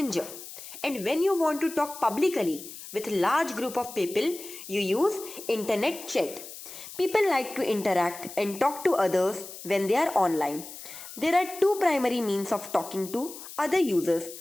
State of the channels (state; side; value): noise; left; hiss, 13 dB below the sound